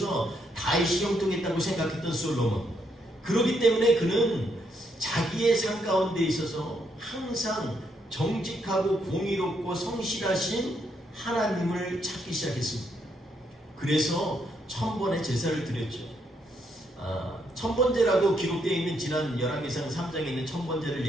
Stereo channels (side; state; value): both; normal; correlation 0.75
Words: 다윗이 형통했다고 생각했던 솔로몬, 그렇기 때문에 그는 자기의 삶 가운데 있어서 항상 정직하고 공의롭고 성실하신 하나님을 찾기 시작했습니다. 그래서 1000번의 제사를 드렸죠. 천번제라고 기록되어 있는 지난 열왕기상 3장에 있는 천번제를